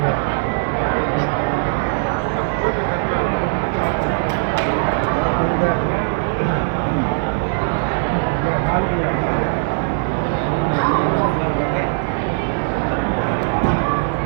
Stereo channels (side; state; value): left; silent; digital silence